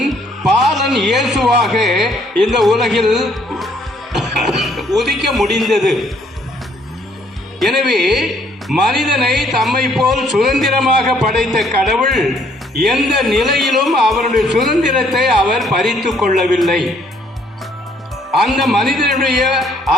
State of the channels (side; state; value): both; normal; correlation 0.65